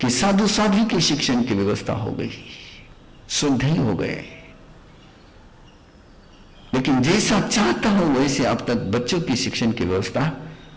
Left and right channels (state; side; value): identical; both; correlation 1.00